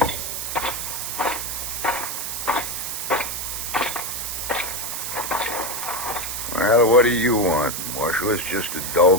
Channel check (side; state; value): right; noise; hiss, 4 dB below the sound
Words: Well, what do you want, Marshal? It's just a